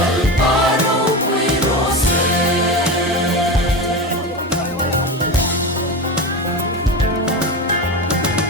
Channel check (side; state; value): both; normal; correlation 0.22